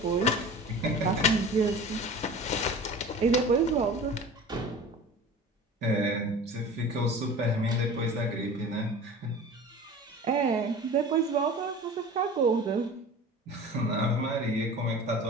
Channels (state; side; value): normal; both; correlation 0.38